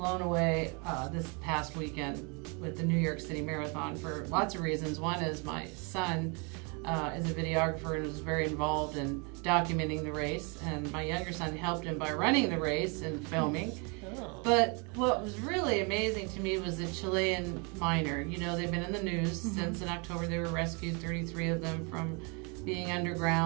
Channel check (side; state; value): left; quieter; 32.9 dB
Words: away this past weekend with the New York City Marathon for lots of reasons. One is my son is a videographer and was very involved in documenting the race, and my younger son helped him by running the race and filming. Oh. But what was really amazing to me was the Chilean miner. You know, they've been in the news since in October. They were rescued, 33 of them, from being